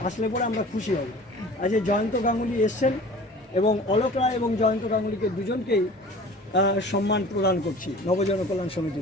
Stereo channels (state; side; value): normal; both; correlation 0.43